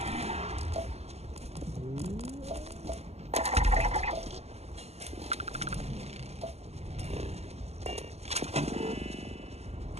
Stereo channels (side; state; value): left; late; 0.30 ms